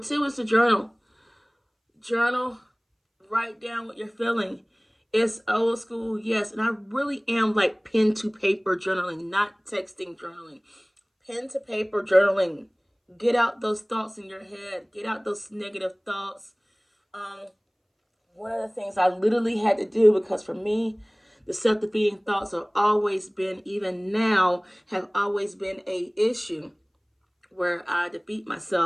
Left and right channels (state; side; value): identical; both; correlation 1.00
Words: is to journal. Journal. Write down what you're feeling. It's old school, yes. And I really am like pen to paper journaling, not texting journaling. Pen to paper journaling. Get out those thoughts in your head. Get out those negative thoughts. One of the things I literally had to do, because for me, the self-defeating thoughts have always been, even now, have always been a issue where I defeat